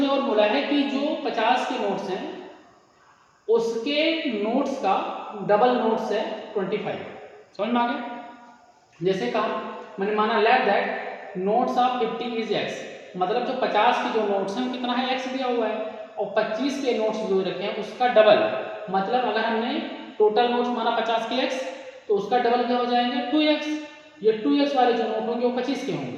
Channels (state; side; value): identical; both; correlation 1.00